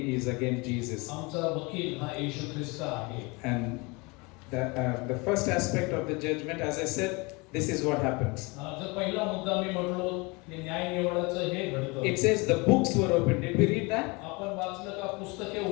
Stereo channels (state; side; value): quieter; right; 27.2 dB